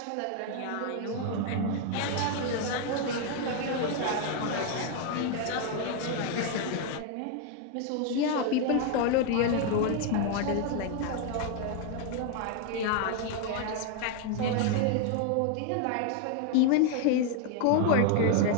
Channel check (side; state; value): both; different; correlation 0.01